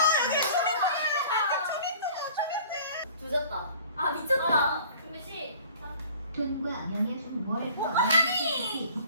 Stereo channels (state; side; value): inverted; both; correlation -0.49